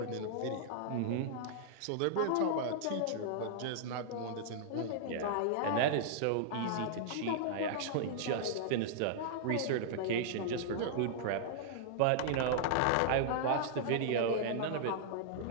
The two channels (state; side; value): different; both; correlation -0.02